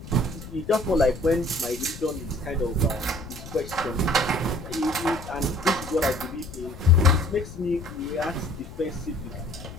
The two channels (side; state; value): left; noise; rumble, 13 dB below the sound